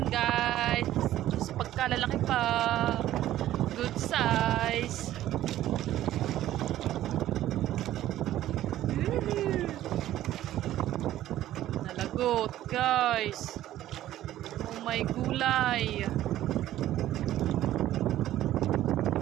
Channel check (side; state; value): left; quieter; 13.5 dB